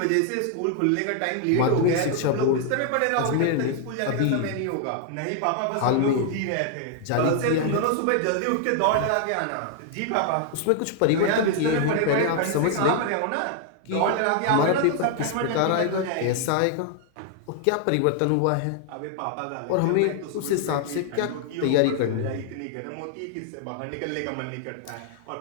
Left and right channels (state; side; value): different; both; correlation 0.00